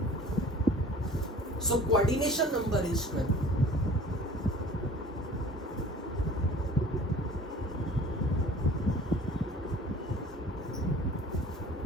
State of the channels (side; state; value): both; normal; correlation 0.47